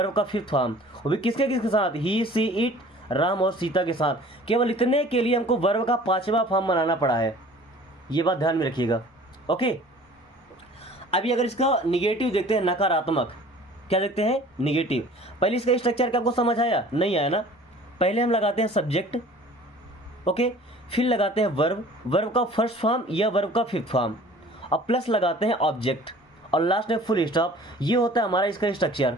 का फिफ्थ फॉर्म। वो भी किसके किसके साथ? ही, सी, इट, राम और सीता के साथ। केवल इतने के लिए हमको वर्ब का पांचवा फॉर्म बनाना पड़ा है। ये बात ध्यान में रखिएगा। ओके, अभी अगर इसका निगेटिव देखते हैं, नकारात्मक, क्या देखते हैं? निगेटिव। पहले इसका स्ट्रक्चर क्या आपको समझ आया? नहीं आया ना? पहले हम लगाते हैं सब्जेक्ट, ओके, फिर लगाते हैं वर्ब, वर्ब का फर्स्ट फॉर्म या वर्ब का फिफ्थ फॉर्म, और प्लस लगाते हैं ऑब्जेक्ट, और लास्ट में फुल स्टॉप। ये होता है हमारा इसका स्ट्रक्चर।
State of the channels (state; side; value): normal; both; correlation 0.48